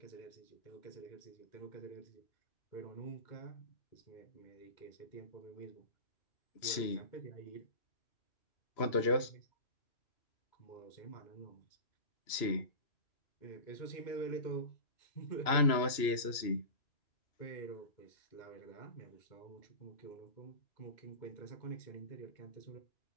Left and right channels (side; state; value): right; late; 2.9 ms